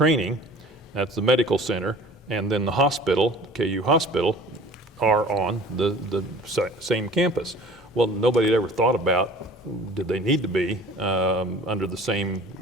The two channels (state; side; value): normal; both; correlation 0.46